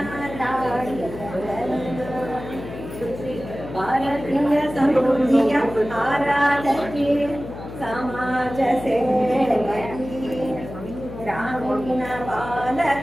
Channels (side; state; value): left; noise; hum, 11 dB below the sound